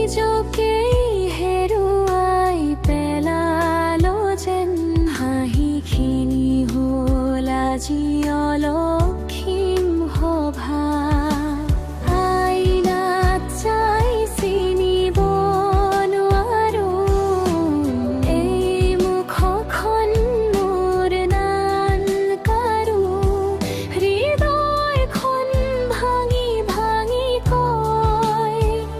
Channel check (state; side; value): identical; both; correlation 1.00